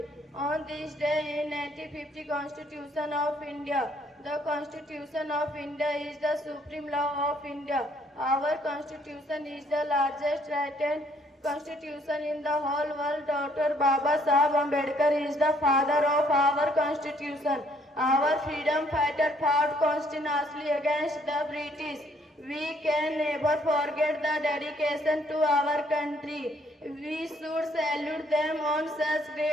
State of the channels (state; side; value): normal; both; correlation 0.65